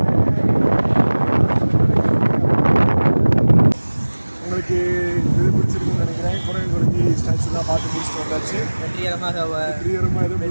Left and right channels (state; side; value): inverted; both; correlation -1.00